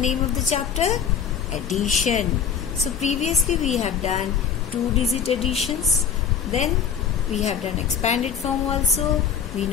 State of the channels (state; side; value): quieter; right; 7.4 dB